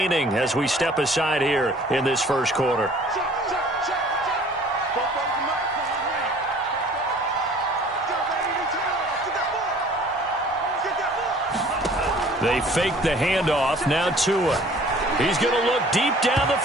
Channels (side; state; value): both; normal; correlation 0.51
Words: as we step aside here in this first quarter. They fake the handoff. Now Tua. He's going to look deep down the